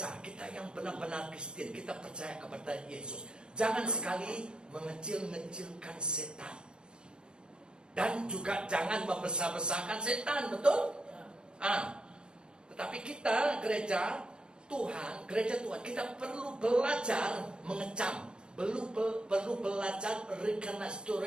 kita yang benar-benar Kristen, kita percaya kepada Yesus, jangan sekali mengecil-ngecilkan setan. Dan juga jangan membesar-besarkan setan, betul? Tetapi kita gereja Tuhan, kita perlu belajar mengecam, perlu belajar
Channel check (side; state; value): left; late; 0.050 ms